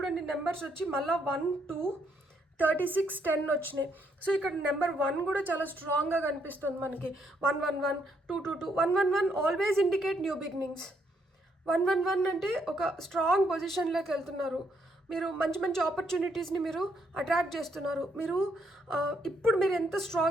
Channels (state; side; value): normal; both; correlation 0.73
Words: నెంబర్స్ వచ్చి మళ్ళీ 1, 2, 36, 10 వచ్చినాయి. సో ఇక్కడ నెంబర్ 1 కూడా చాలా స్ట్రాంగ్గా కనిపిస్తుంది మనకి. 111, 222, 111 ఆల్వేస్ ఇండికేట్ న్యూ బిగినింగ్స్. 111 అంటే ఒక స్ట్రాంగ్ పొజిషన్లోకి వెళ్తున్నారు, మీరు మంచి మంచి ఆపర్చునిటీస్ని మీరు అట్రాక్ట్ చేస్తున్నారు. మీరు ఇప్పుడు మీరు ఎంత